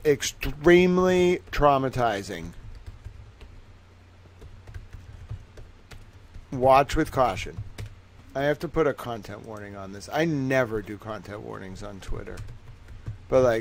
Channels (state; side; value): identical; both; correlation 1.00